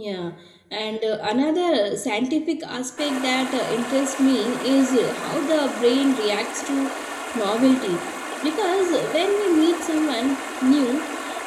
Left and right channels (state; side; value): identical; both; correlation 1.00